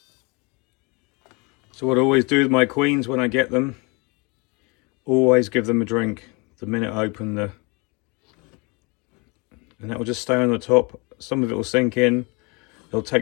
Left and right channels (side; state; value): right; quieter; 29.6 dB